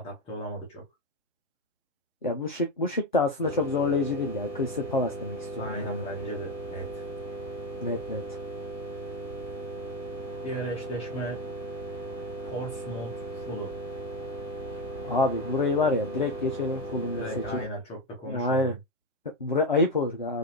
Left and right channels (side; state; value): both; normal; correlation 0.13